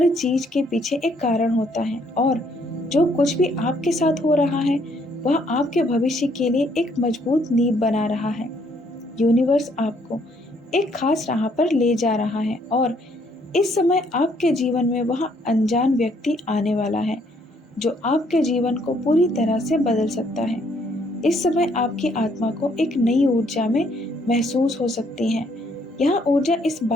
चीज़ के पीछे एक कारण होता है और जो कुछ भी आपके साथ हो रहा है वह आपके भविष्य के लिए एक मजबूत नींव बना रहा है। यूनिवर्स आपको एक खास राह पर ले जा रहा है और इस समय आपके जीवन में वह अनजान व्यक्ति आने वाला है जो आपके जीवन को पूरी तरह से बदल सकता है। इस समय आपकी आत्मा को एक नई ऊर्जा में महसूस हो सकती है। यह ऊर्जा इस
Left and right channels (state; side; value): normal; both; correlation 0.67